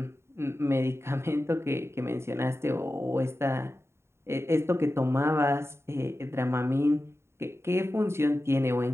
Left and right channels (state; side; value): late; left; 0.13 ms